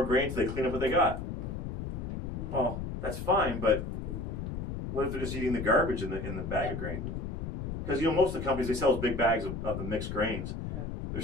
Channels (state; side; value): noise; left; rumble, 5 dB below the sound